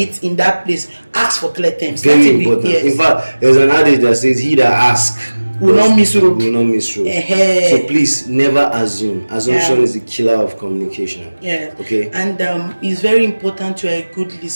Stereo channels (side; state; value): both; inverted; correlation -1.00